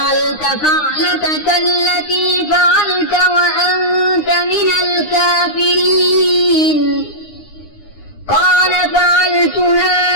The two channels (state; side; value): late; right; 9.7 ms